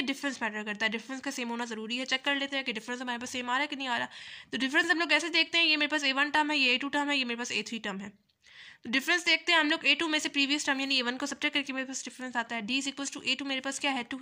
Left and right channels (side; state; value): both; identical; correlation 1.00